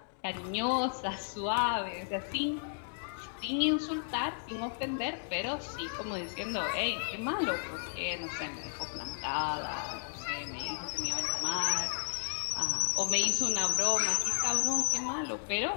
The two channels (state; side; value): silent; right; digital silence